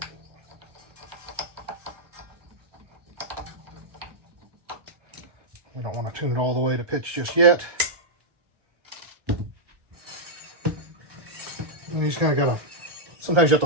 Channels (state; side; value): late; left; 1.4 ms